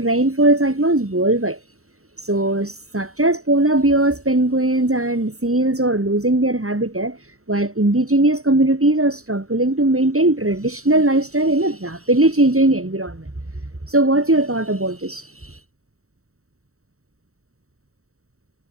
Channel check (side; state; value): left; late; 0.64 ms